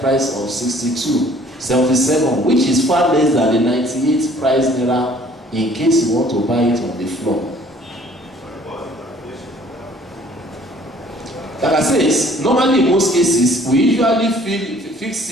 of 77, which is far less than the 98 price naira in case you want to buy it on the floor. Like I said, normally in most cases, we usually fix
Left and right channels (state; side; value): normal; both; correlation 0.56